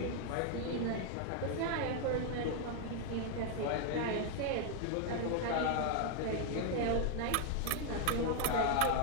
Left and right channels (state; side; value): different; both; correlation 0.00